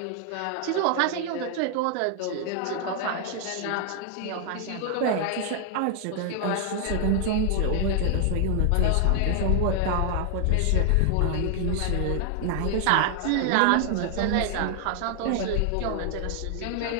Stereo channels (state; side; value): different; both; correlation 0.00